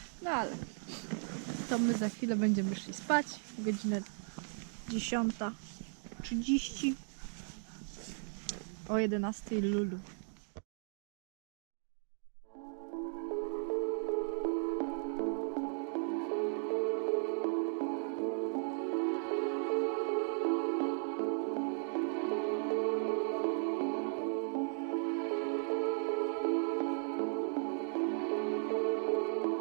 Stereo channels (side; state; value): left; silent; 53 dB below the other